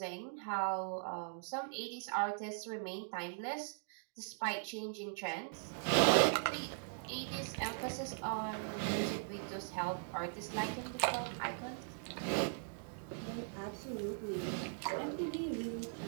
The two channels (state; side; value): silent; left; digital silence